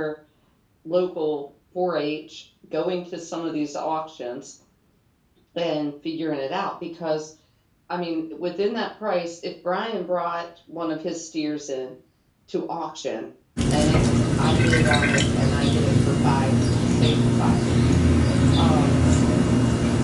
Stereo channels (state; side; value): identical; both; correlation 1.00